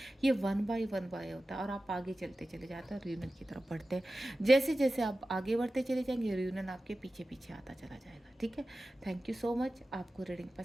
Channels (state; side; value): normal; both; correlation 0.95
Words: ये वन बाय होता है और आप आगे चलते चले जाते हैं, रियूनियन की तरफ बढ़ते हैं। जैसे जैसे आप आगे बढ़ते चले जाएंगे, रियूनियन आपके पीछे पीछे आता चला जाएगा। ठीक है, थैंक यू सो मच। आपको रीडिंग